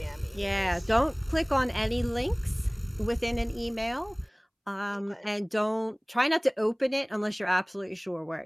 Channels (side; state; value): both; identical; correlation 1.00